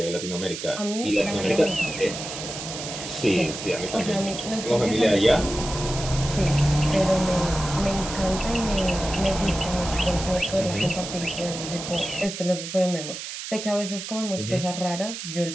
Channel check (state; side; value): noise; right; hiss, 8 dB below the sound